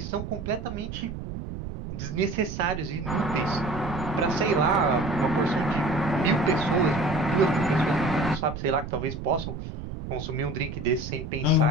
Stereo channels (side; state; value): right; noise; rumble, 8 dB below the sound